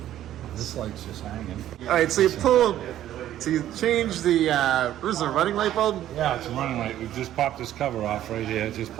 This light's just hanging. All right, so you change the, what is it, running light bulb? Yeah, it's a running light. We just popped this cover off right here. It just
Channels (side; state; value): left; quieter; 12.4 dB